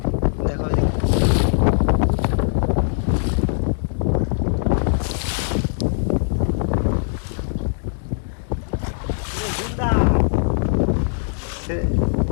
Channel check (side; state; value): right; silent; digital silence